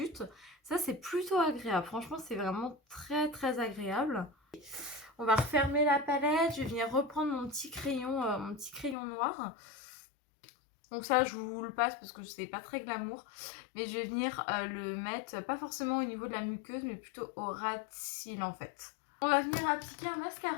Ça, c'est plutôt agréable. Franchement, c'est vraiment très très agréable. On va refermer la palette. Je vais venir reprendre mon petit crayon noir. Donc ça, je vous le passe parce que c'est pas très glamour. Mais je vais venir le mettre, pas forcément au niveau de la muqueuse, mais plutôt au ras de cils en fait. On va venir appliquer un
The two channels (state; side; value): drops out; right; at 9.0 s